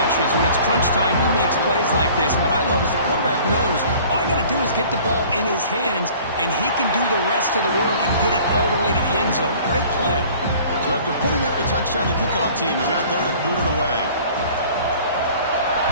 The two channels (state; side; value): inverted; both; correlation -0.49